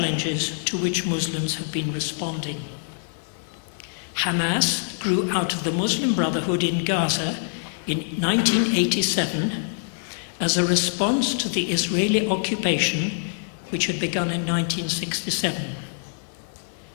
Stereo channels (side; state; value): right; silent; 62 dB below the other